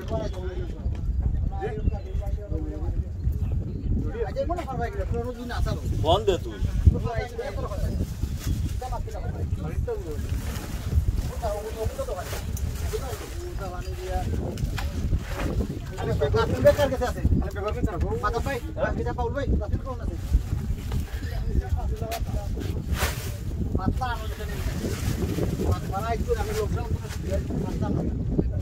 আজে মনে করবা কি পুরো দিন আসালো বন্ধ দে তুই আরে বেকার বেকার কেসে আছে আরে বেকার কেসে আছে মাথা পাই এটা পাউল ভাই রাতে কোন আছে মাথা আনো যেতে মাথা একটু আমি লোকজন মাথা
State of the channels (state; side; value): identical; both; correlation 1.00